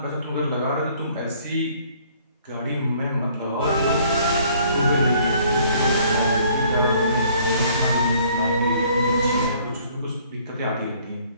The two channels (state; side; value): inverted; both; correlation -0.60